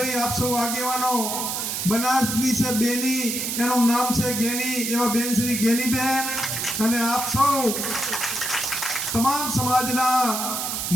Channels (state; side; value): noise; right; hiss, 2 dB below the sound